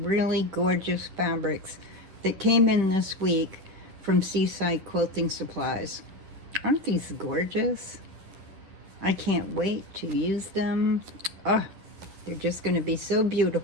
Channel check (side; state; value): left; late; 10 ms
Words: gorgeous fabrics that came in this week from Seaside Quilting Supplies. Aren't these gorgeous? I can't wait to use them. Oh, they're just going to be so